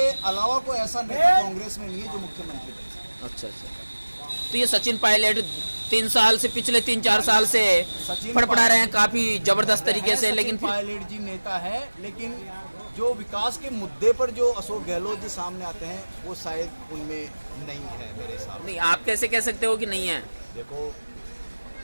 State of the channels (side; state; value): both; inverted; correlation -1.00